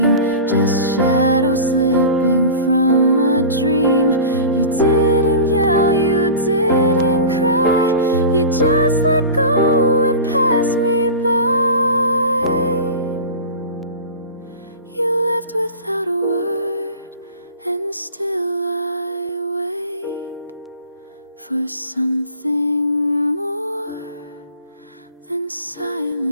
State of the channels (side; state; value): both; inverted; correlation -0.33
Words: just shadows slipping from a dream. You didn't yell, you didn't cry, you just let go and passed me by. You left without a word, and still I wait for something more than